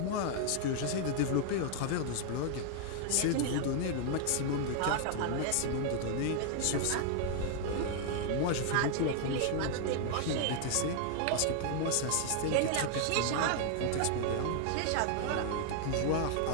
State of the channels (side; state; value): both; different; correlation 0.00